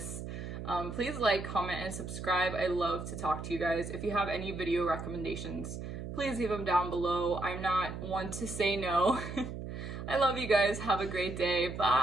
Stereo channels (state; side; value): noise; right; hum, 7 dB below the sound